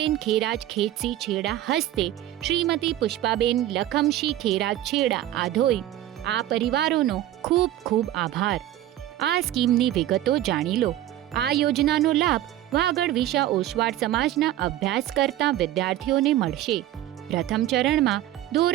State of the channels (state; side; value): quieter; left; 13.4 dB